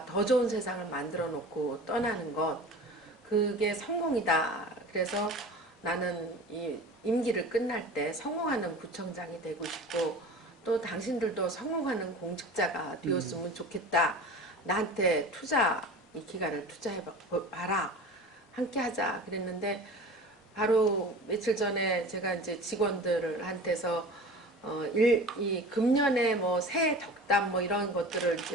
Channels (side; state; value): both; normal; correlation 0.37